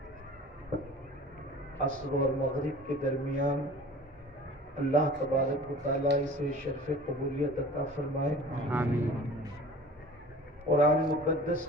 عصر اور مغرب کے درمیان اللہ تبارک و تعالیٰ اسے شرف قبولیت عطا فرمائے. آمین. قرآن مقدس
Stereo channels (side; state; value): both; normal; correlation 0.43